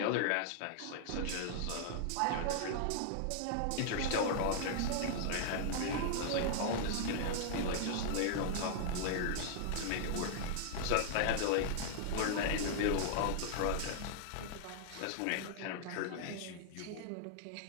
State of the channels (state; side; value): different; both; correlation -0.01